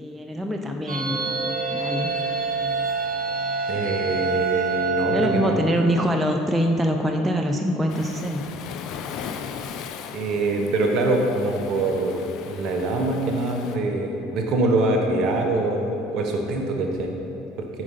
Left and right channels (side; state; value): both; normal; correlation 0.49